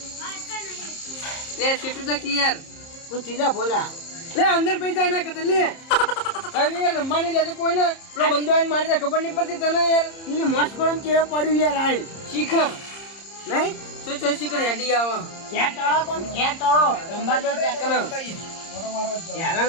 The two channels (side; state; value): right; late; 30 ms